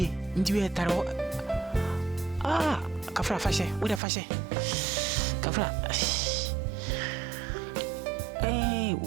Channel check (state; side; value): drops out; left; at 4.0 s